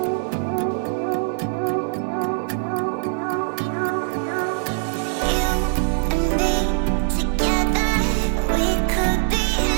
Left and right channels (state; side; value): silent; left; digital silence